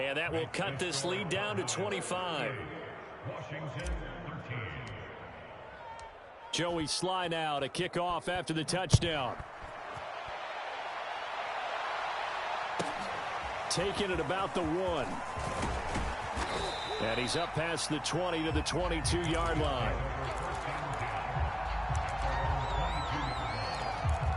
that will cut this lead down to 25. Joey Sly now to kick off after the touchdown. Taking it about the 1. And he's up past the 20 to the 22-yard line.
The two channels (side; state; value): both; identical; correlation 1.00